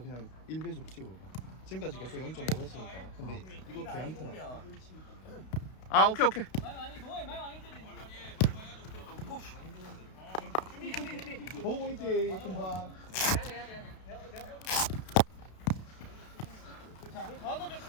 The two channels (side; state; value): right; late; 32 ms